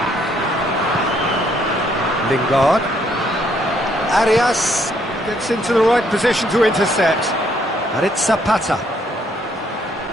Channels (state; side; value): normal; both; correlation 0.69